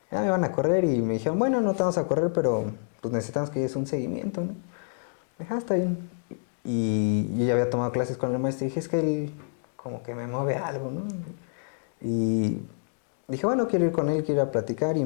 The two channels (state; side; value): silent; right; digital silence